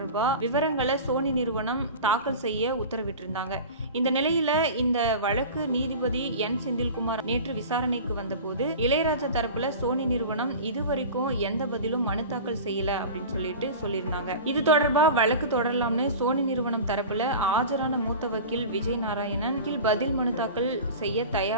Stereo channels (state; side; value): inverted; both; correlation -0.34